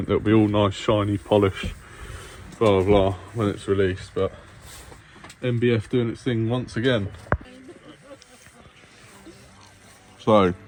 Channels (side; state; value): both; identical; correlation 1.00